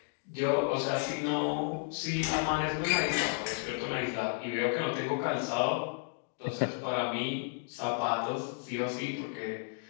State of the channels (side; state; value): right; silent; 56 dB below the other